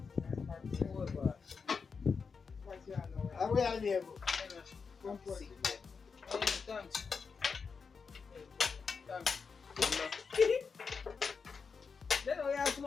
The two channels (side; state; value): right; quieter; 5.4 dB